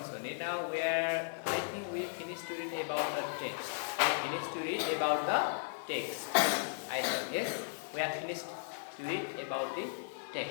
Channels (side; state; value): right; silent; digital silence